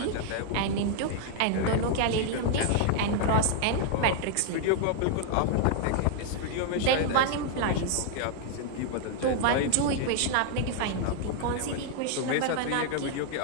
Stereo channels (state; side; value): different; both; correlation 0.00